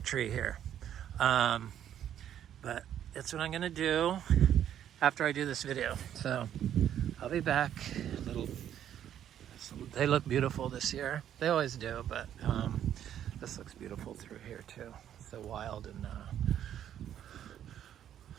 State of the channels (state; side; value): quieter; left; 10.4 dB